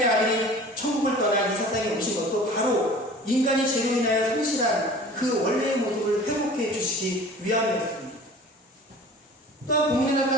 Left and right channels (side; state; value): both; normal; correlation 0.43